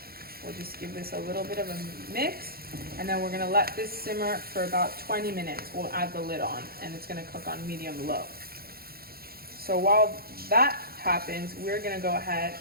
We'll just give this a little bit of a mix, and then we're gonna let this simmer for about 20 minutes. We'll add the lid on, and it's gonna cook on medium-low. So while that happens, we're gonna go ahead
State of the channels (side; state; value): left; late; 0.44 ms